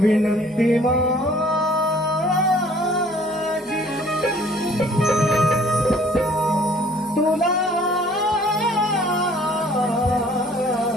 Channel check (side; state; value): both; normal; correlation 0.56